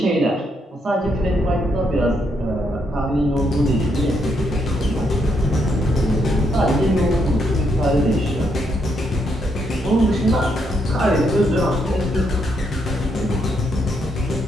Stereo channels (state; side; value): normal; both; correlation 0.77